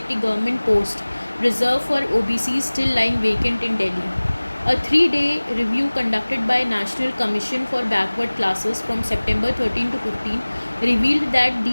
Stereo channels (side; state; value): both; inverted; correlation -1.00